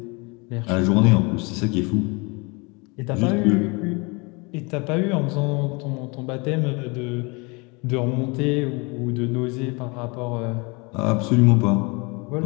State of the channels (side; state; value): right; quieter; 28.8 dB